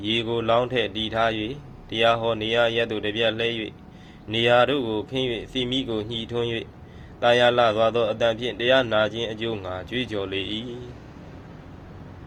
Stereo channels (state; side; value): identical; both; correlation 1.00